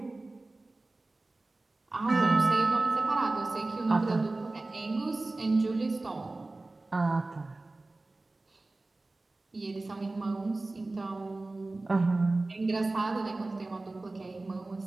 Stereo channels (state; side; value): quieter; left; 3.1 dB